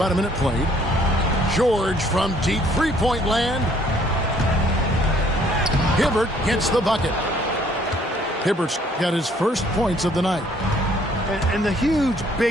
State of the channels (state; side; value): normal; both; correlation 0.62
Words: a minute played. George from deep three-point land. Hibbert gets the bucket. Hibbert's got his first points of the night. And the huge,